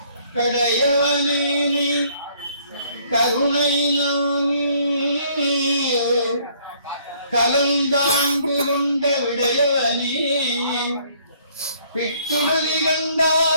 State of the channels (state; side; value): inverted; both; correlation -0.63